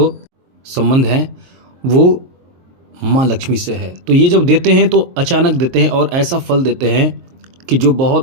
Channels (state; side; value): late; left; 23 ms